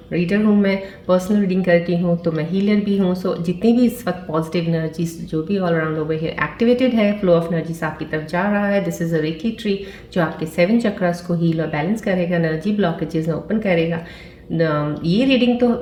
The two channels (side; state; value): both; identical; correlation 1.00